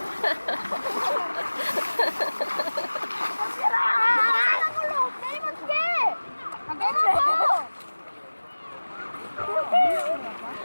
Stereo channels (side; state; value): both; inverted; correlation -1.00